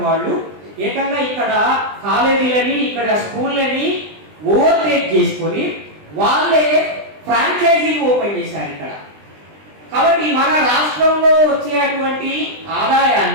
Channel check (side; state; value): left; late; 20 ms